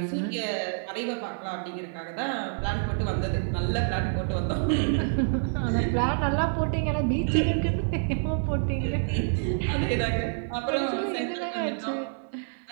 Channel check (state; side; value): silent; left; 60 dB below the other